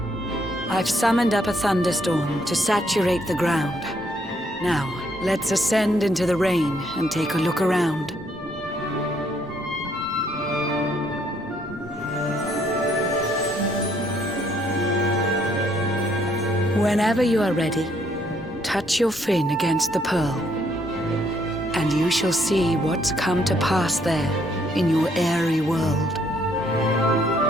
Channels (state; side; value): normal; both; correlation 0.69